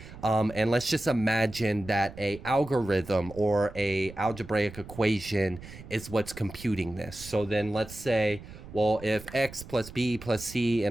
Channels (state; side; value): noise; right; rumble, 16 dB below the sound